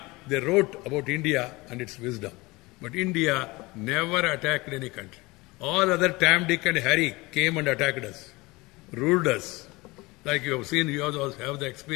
they wrote about India and its wisdom. But India never attacked any country. All other Tam, Dick and Harry came and attacked us, ruled us. Like you have seen, you also have the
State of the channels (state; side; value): quieter; right; 22.7 dB